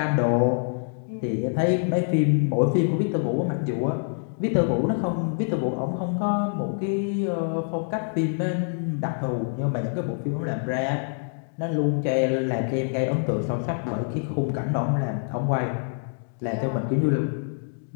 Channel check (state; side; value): silent; right; digital silence